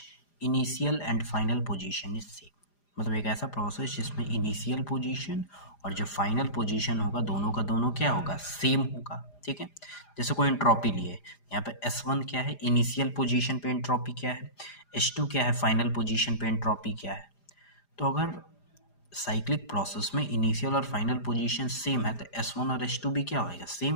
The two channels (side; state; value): right; late; 4.9 ms